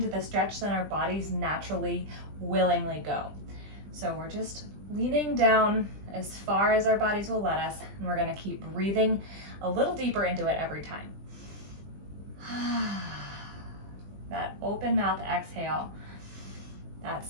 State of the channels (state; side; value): late; left; 20 ms